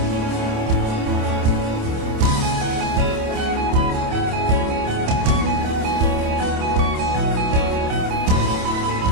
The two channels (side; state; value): left; late; 27 ms